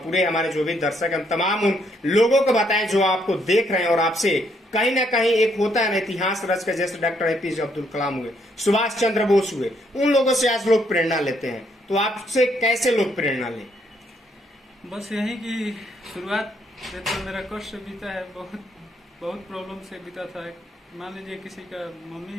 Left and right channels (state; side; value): normal; both; correlation 0.72